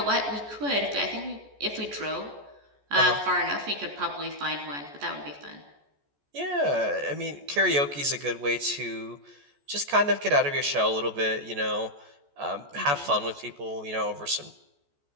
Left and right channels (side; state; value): left; late; 14 ms